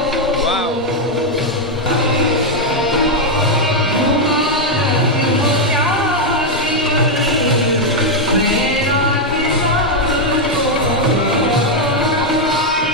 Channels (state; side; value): normal; both; correlation 0.01